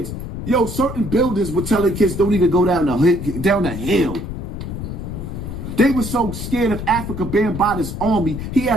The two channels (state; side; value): noise; left; rumble, 7 dB below the sound